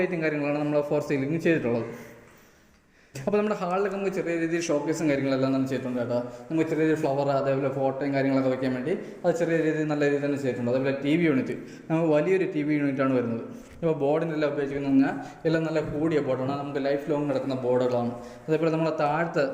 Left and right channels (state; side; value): identical; both; correlation 1.00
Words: ലൈറ്റും കാര്യങ്ങളാണ് നമ്മൾ 4 സീലിംഗ് ചെയ്തിട്ടുള്ളത്. അപ്പോൾ നമ്മുടെ ഹാളിലൊക്കെ നമുക്ക് ചെറിയ രീതിയിൽ ഷോക്കേസും കാര്യങ്ങളെല്ലാം തന്നെ ചെയ്തിട്ടുണ്ട് കേട്ടോ. നമുക്ക് ചെറിയ രീതിയിൽ ഫ്ലവർ അതേപോലെ ഫോട്ടോയും കാര്യങ്ങളൊക്കെ വയ്ക്കാൻ വേണ്ടി അത് ചെറിയ രീതിയിൽ നല്ല രീതിയിൽ തന്നെ ചെയ്തിട്ടുണ്ട്. അതേപോലെ TV യൂണിറ്റ്, നമുക്ക് വലിയൊരു TV യൂണിറ്റാണ് വരുന്നത്. ഇപ്പോൾ ബോർഡിനെല്ലാം ഉപയോഗിക്കുന്നത് പറഞ്ഞാൽ എല്ലാം നല്ല കൂടിയ ബോർഡാണ്, നമുക്ക് ലൈഫ് ലോങ് നടക്കുന്ന ബോർഡുകളാണ്. അതേപോലെ